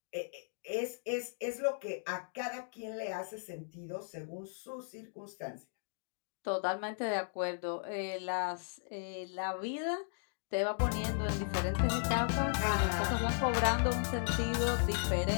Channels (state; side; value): silent; right; digital silence